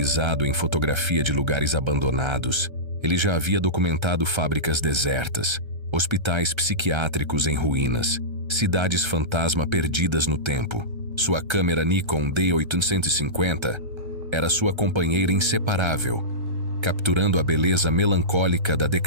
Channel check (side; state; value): left; late; 1.3 ms